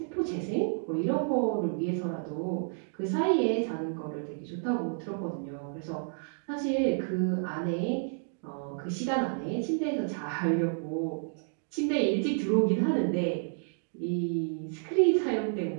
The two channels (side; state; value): left; silent; digital silence